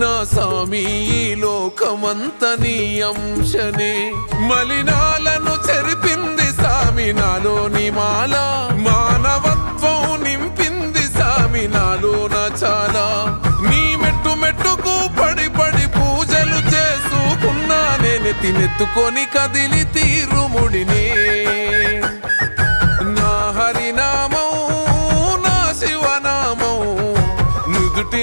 సామి ఈ లోకమంత నీ అంశనే మలినాలను చెరిపింది సామి నాలోని మాల మానవత్వం నింపింది సామి నాలోన చాలా నీ మెట్టు మెట్టుకు పడి పడి పూజలు చేసుకున్నా నేను తినెత్తుకొని కదిలి తీరుముడినే నా హరినామం నా శివనామం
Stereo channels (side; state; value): both; inverted; correlation -1.00